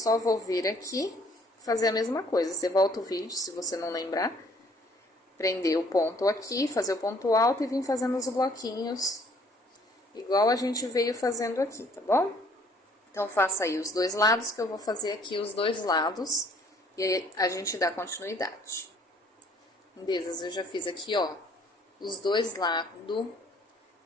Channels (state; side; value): normal; both; correlation 0.60